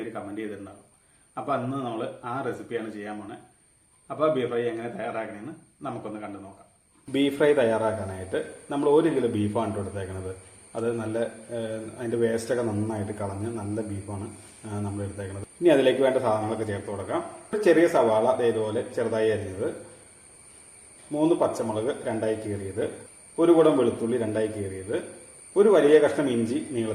കമന്റ് ചെയ്തിട്ടുണ്ടാകും. അപ്പോൾ അന്ന് നമ്മൾ ആ റെസിപ്പിയാണ് ചെയ്യാൻ പോണത്. അപ്പോൾ ബീഫ് ഫ്രൈ എങ്ങനെ തയ്യാറാക്കണമെന്ന് നമുക്കൊന്ന് കണ്ടു നോക്കാം. ബീഫ് ഫ്രൈ തയ്യാറാക്കാനായിട്ട് നമ്മൾ 1 കിലോ ബീഫാണ് എടുത്തേക്കുന്നത്. അത് നല്ല അതിന്റെ വേസ്റ്റൊക്കെ നന്നായിട്ട് കളഞ്ഞ് നല്ല ബീഫാണ് നമ്മൾ എടുത്തേക്കുന്നത്. ഇനി അതിലേക്ക് വേണ്ട സാധനങ്ങളൊക്കെ ചേർത്ത് കൊടുക്കാം. ഒരു ചെറിയ സവാള ഇതുപോലെ ചെറുതായി അരിഞ്ഞത്, 3 പച്ചമുളക് 2ആയി കീറിയത്, 1 കുടം വെളുത്തുള്ളി 2ആയി കീറിയത്, ഒരു വലിയ കഷ്ണം ഇഞ്ചി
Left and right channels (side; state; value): both; identical; correlation 1.00